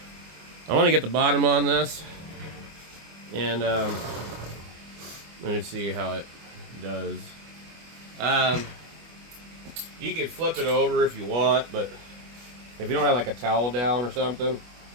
I want to get the bottom on this, and let me see how it does. You can flip it over if you want, but if you don't have like a towel down or something,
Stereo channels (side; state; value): left; late; 24 ms